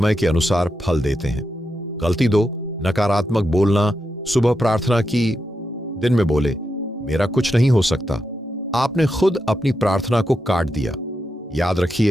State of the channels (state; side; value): normal; both; correlation 0.86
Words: के अनुसार फल देते हैं। गलती 2, नकारात्मक बोलना। सुबह प्रार्थना की, दिन में बोले मेरा कुछ नहीं हो सकता। आपने खुद अपनी प्रार्थना को काट दिया। याद